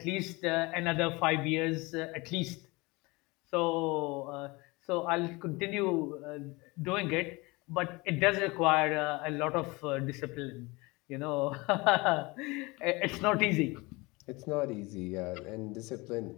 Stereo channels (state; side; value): quieter; right; 24.4 dB